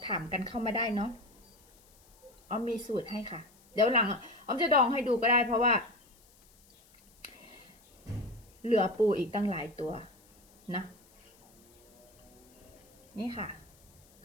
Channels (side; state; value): left; noise; hiss, 29 dB below the sound